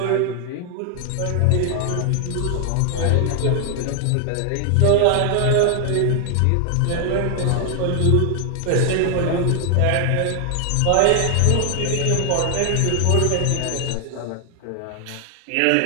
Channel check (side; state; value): both; different; correlation 0.00